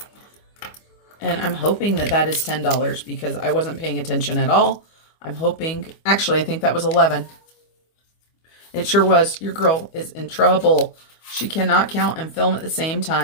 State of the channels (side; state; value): right; late; 25 ms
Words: And I'm hoping that that is $10 because I wasn't paying attention at all. I'm hoping, actually, I think that was 11. It sure was. Your girl is in trouble. She cannot count and film at the same